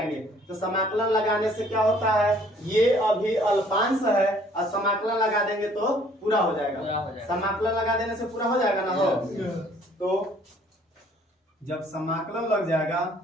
तो समाकलन लगाने से क्या होता है? ये अभी अल्पांश है और समाकलन लगा देंगे तो पूरा हो जाएगा। समाकलन लगा देने से पूरा हो जाएगा ना। हो तो जब समाकलन लग जाएगा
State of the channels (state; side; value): normal; both; correlation 0.59